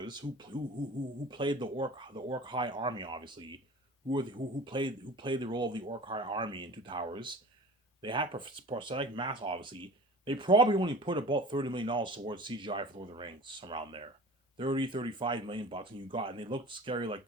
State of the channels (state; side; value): normal; both; correlation 0.39